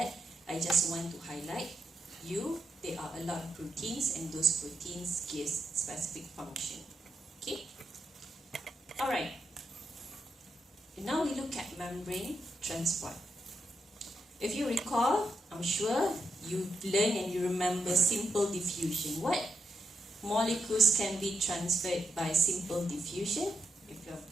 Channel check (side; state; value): both; normal; correlation 0.83